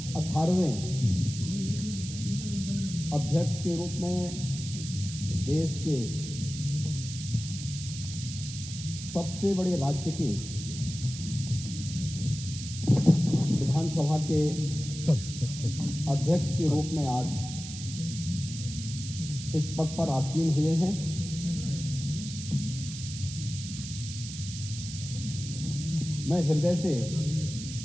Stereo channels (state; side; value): noise; right; hiss, 10 dB below the sound